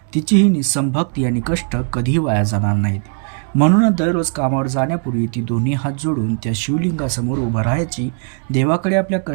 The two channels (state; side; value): quieter; left; 39.3 dB